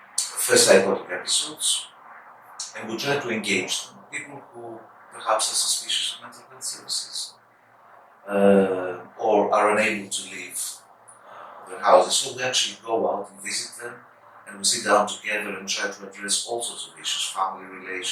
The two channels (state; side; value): identical; both; correlation 1.00